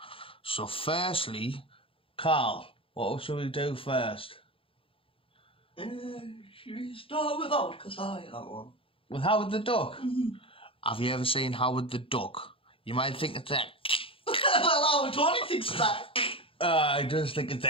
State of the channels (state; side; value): late; right; 0.26 ms